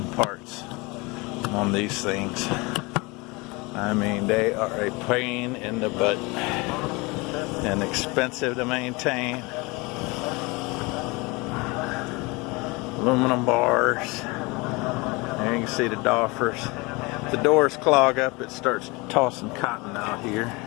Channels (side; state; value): right; quieter; 25.8 dB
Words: parts on these things. I mean, they are a pain in the butt and expensive to maintain. Aluminum bars. There you can see the doffers. If the doors clog up, it starts tossing cotton out here.